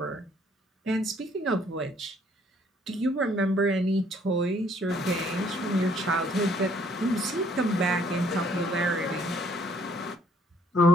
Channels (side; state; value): both; normal; correlation 0.63